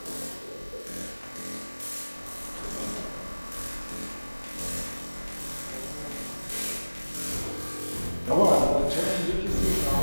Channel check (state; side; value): inverted; both; correlation -1.00